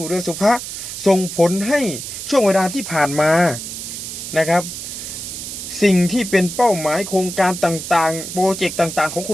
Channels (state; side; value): noise; right; hiss, 8 dB below the sound